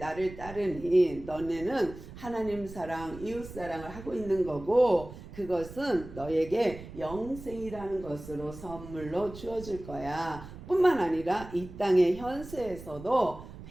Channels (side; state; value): right; noise; rumble, 14 dB below the sound